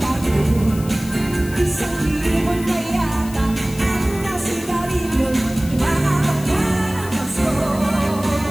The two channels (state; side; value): noise; left; hiss, 16 dB below the sound